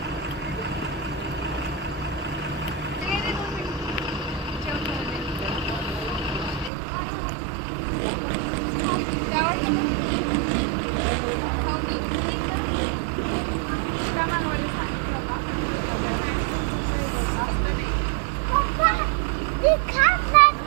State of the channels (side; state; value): left; drops out; at 6.7 s